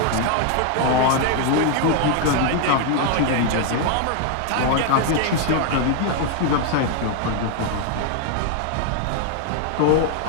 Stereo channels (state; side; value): different; both; correlation 0.00